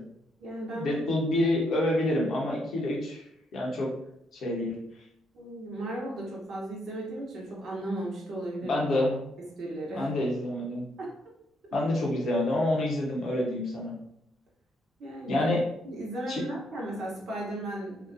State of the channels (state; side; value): normal; both; correlation 0.74